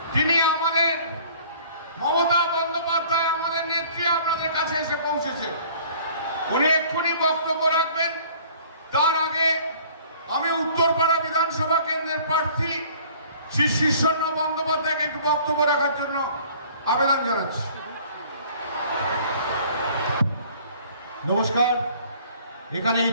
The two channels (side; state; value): both; inverted; correlation -0.52